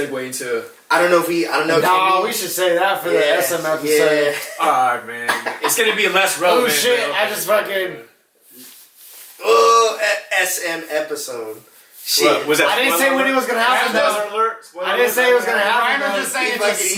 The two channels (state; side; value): identical; both; correlation 1.00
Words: into. I don't know. No, we should say that for the SM episode. Yeah. Alright, man. It's gonna be less relevant. Oh shit! man. I just fucking. SM episode. Shit. What, was that I didn't say when it was gonna happen. Spoiler though. alert. Spoiler I didn't say it was gonna happen. Ryan was though. just saying He it's a fucking-